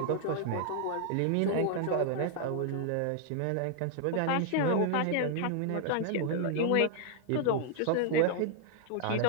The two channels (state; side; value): different; both; correlation -0.01